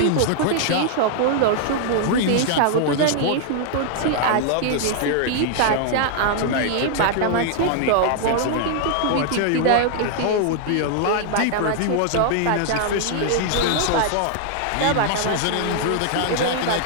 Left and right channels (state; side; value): different; both; correlation 0.00